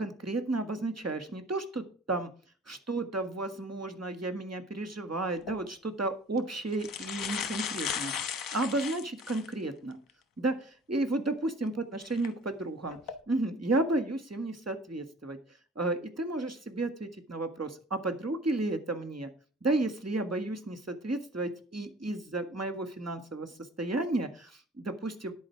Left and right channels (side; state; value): both; normal; correlation 0.47